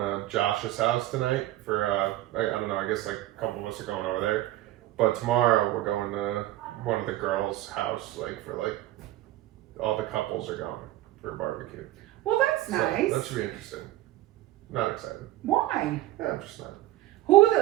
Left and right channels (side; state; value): left; quieter; 15.3 dB